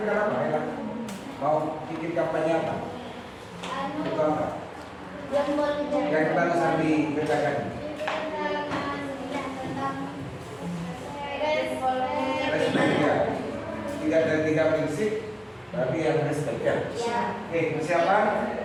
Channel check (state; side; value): identical; both; correlation 1.00